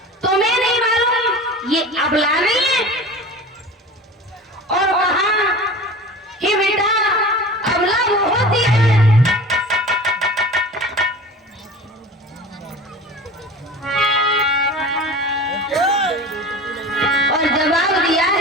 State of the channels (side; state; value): both; normal; correlation 0.37